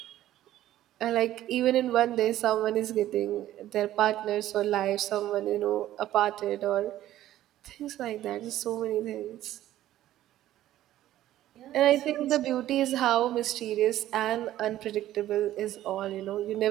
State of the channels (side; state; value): left; quieter; 13.5 dB